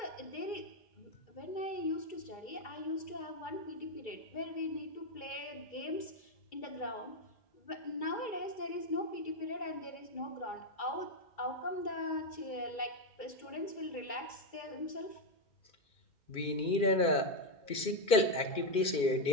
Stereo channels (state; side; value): late; right; 2.4 ms